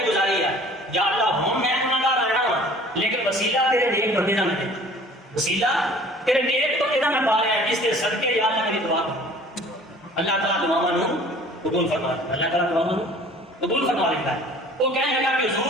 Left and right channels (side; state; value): both; normal; correlation 0.49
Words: گزاری ہے. یا اللہ ہوں میں گناہگار آیا ہوں لیکن وسیلہ تیرے نیک بندے کا ملے, وسیلہ تیرے نیک بندے کا میں پا رہا ہے, جس کے صدقے یا اللہ میری دعا کر. اللہ تعالیٰ دعا نو قبول فرما, اللہ تعالیٰ دعا نو قبول فرما لیتا ہے. وہ کہنے لگا کہ